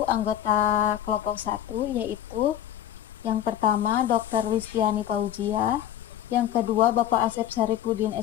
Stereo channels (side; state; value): right; quieter; 11.3 dB